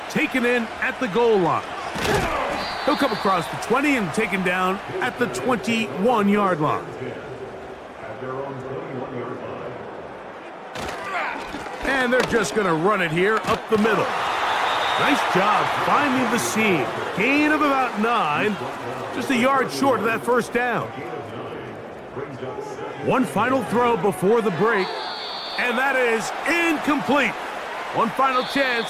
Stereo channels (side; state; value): both; identical; correlation 1.00